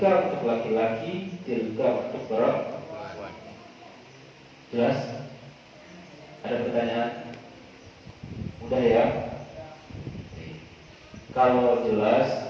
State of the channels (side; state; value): both; identical; correlation 1.00